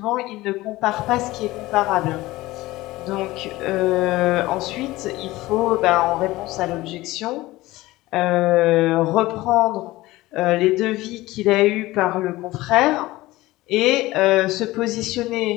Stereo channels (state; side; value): quieter; right; 18.5 dB